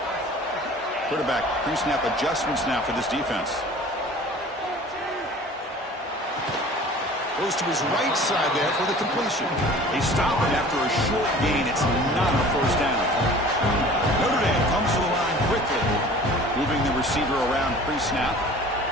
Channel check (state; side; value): normal; both; correlation 0.45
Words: Quarterback pre-snap adjustments now for this defense. Goes to his right side there for the completion. They stop him after a short gain. It's not a 1st down. Notre Dame comes to the line quickly, moving the receiver around pre-snap.